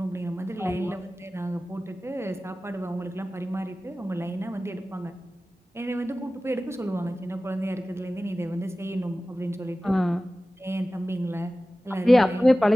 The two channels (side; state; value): both; normal; correlation 0.96